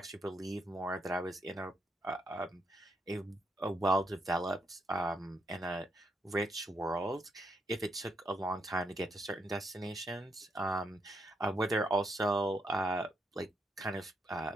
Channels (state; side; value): normal; both; correlation 0.78